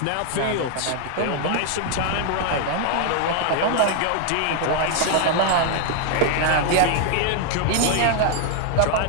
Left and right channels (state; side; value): different; both; correlation 0.00